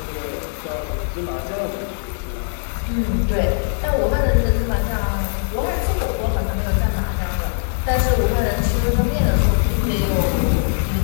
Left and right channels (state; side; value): silent; right; digital silence